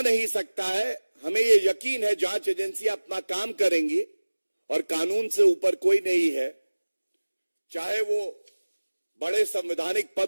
नहीं सकता है। हमें ये यकीन है जांच एजेंसियां अपना काम करेंगी और कानून से ऊपर कोई नहीं है, चाहे वो बड़े संवैधानिक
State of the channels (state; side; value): inverted; both; correlation -1.00